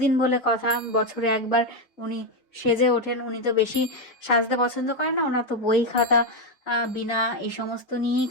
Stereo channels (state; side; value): late; right; 2.8 ms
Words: বলে কথা, বছরে একবার উনি সেজে ওঠেন। উনি তো বেশি সাজতে পছন্দ করেন না, ওনার তো বই খাতা বিনা এই সমস্ত নিয়েই